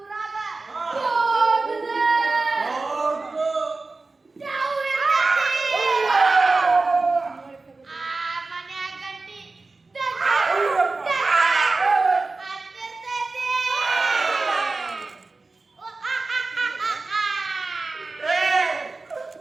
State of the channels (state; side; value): quieter; left; 3.6 dB